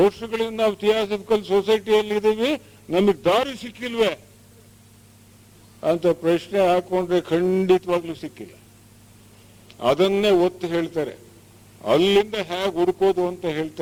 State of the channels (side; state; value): both; identical; correlation 1.00